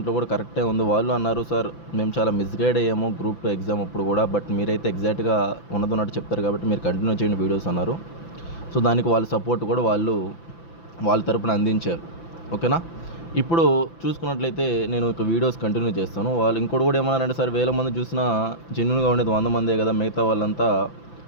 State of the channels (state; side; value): late; right; 5.9 ms